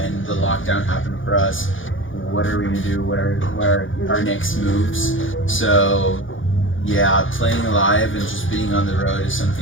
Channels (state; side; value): late; right; 0.57 ms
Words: the lockdown happened for us. What are we gonna do? What are our next moves? So, yeah, playing live and just being on the road is